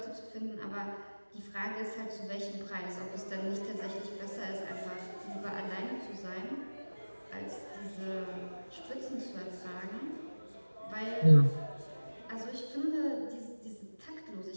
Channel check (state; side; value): inverted; both; correlation -1.00